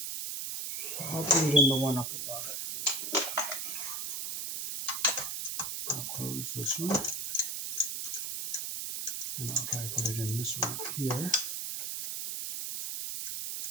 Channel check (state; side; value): noise; right; hiss, 3 dB below the sound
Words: I'll put it in the one up above it. I'll close this one. And I'll try to put it in this one up here.